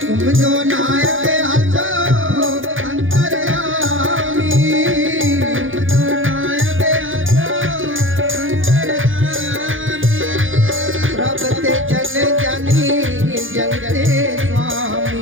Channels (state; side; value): late; left; 0.58 ms